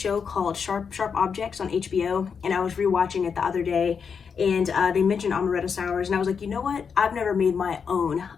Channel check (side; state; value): right; quieter; 6.3 dB